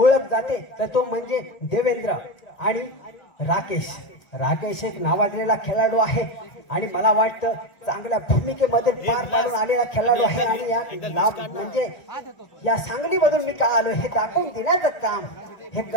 जाते तर तो म्हणजे देवेंद्र आणि राकेश. राकेश एक नावाजलेला खेळाडू आहे आणि मला वाटतं चांगल्या भूमिकेमध्ये पार पाडून आलेला खेळाडू आहे. आणि या म्हणजे या सांगलीमधून मी का आलो हे दाखवून देण्याचं काम हे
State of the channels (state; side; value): late; right; 1.9 ms